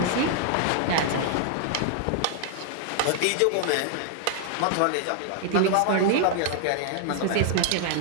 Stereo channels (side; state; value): both; different; correlation 0.00